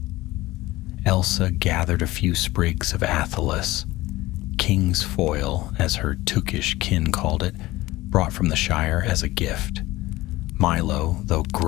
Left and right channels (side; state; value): right; quieter; 18.4 dB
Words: Elsa gathered a few sprigs of athelas, king's foil, as her Tookish kin called it, brought from the Shire as a gift. Milo, though